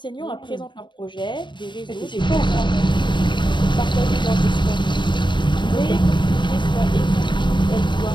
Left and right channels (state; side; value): late; right; 0.23 ms